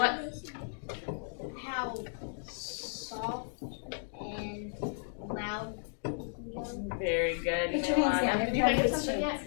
How soft and loud it can go. Very good. Put You your may hands line down. up. Did you think of Everybody something gets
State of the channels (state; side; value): silent; right; 55 dB below the other